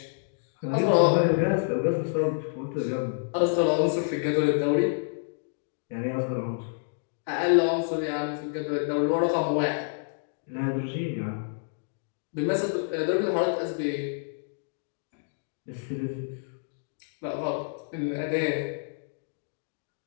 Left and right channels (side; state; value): right; silent; digital silence